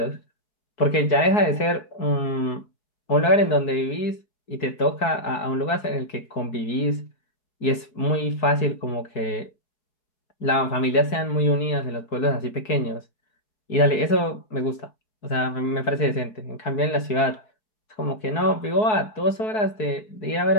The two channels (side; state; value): right; late; 4.7 ms